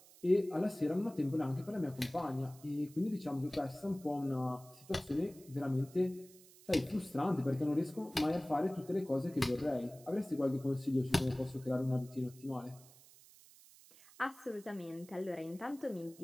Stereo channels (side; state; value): right; noise; hiss, 23 dB below the sound